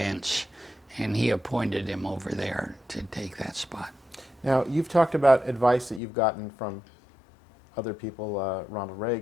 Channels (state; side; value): drops out; right; at 6.0 s